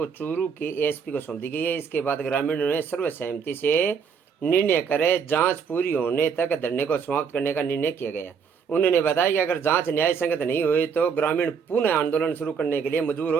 चूरू के एएसपी को सौंप दी गई है। इसके बाद ग्रामीणों ने सर्वसहमति से निर्णय करे जांच पूरी होने तक धरने को समाप्त करने का निर्णय किया गया। उन्होंने बताया कि अगर जांच न्याय संगत नहीं हुई तो ग्रामीण पुनः आंदोलन शुरू करने के लिए मजबूर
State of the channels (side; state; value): left; quieter; 6.4 dB